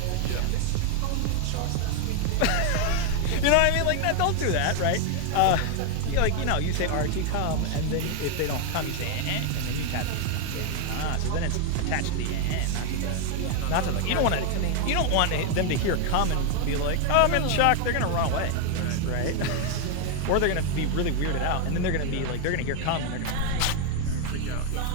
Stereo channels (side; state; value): both; different; correlation 0.01